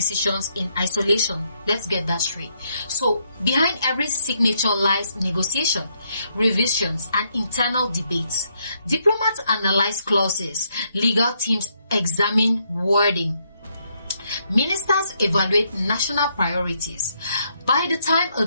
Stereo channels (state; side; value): inverted; both; correlation -0.75